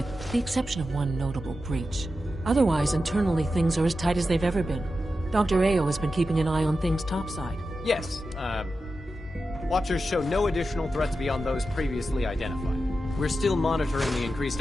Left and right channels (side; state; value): both; normal; correlation 0.91